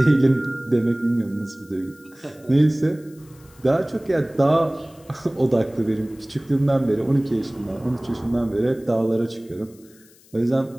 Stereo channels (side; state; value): left; noise; hiss, 27 dB below the sound